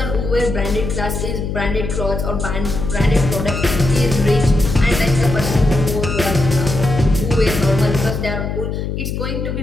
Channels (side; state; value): left; noise; hum, 4 dB below the sound